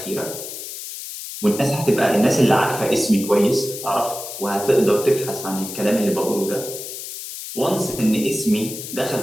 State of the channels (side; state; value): left; noise; hiss, 9 dB below the sound